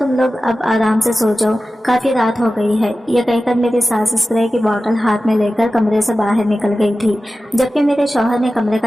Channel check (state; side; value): normal; both; correlation 0.95